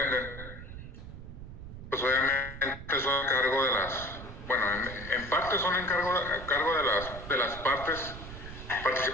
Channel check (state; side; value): noise; right; rumble, 12 dB below the sound